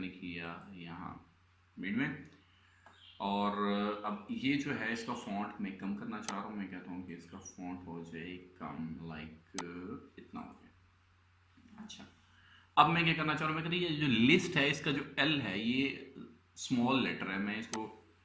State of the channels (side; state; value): both; identical; correlation 1.00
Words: किया यहाँ मिड में, और अब ये जो है इसका फॉन्ट मैं कम करना चाह रहा हूँ। मैं कहता हूँ कि इसका फॉन्ट हो जाए कम, लाइक इतना हो गया। अच्छा, अब मैं क्या करना चाह रहा हूँ, मैं कहती ये जो लिस्ट है इसका जो एल है ये स्मॉल लेटर है, मैं इसको